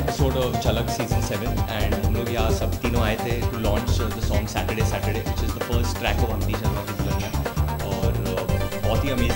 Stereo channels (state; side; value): identical; both; correlation 1.00